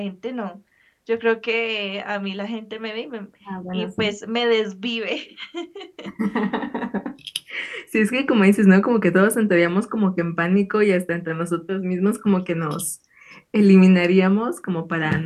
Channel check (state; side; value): identical; both; correlation 1.00